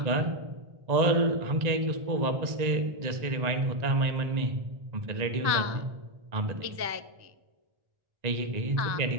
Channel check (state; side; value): late; left; 1.9 ms